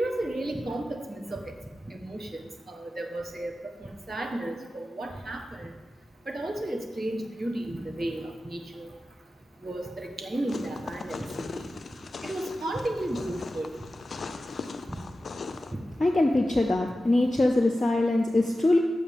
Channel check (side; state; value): both; normal; correlation 0.93